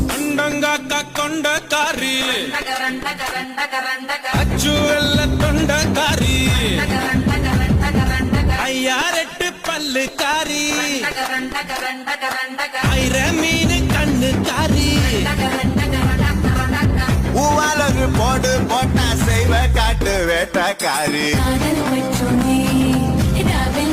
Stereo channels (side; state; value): both; identical; correlation 1.00